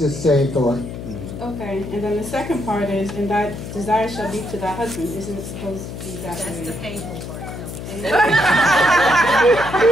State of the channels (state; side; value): noise; left; hum, 9 dB below the sound